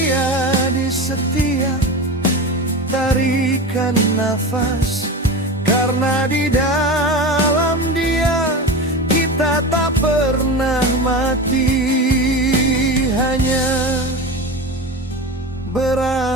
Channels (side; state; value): both; normal; correlation 0.26